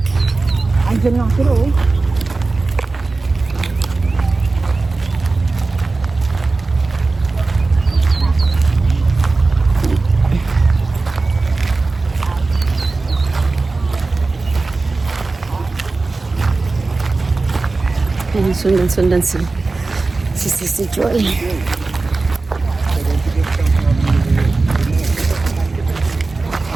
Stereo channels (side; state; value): left; quieter; 3.6 dB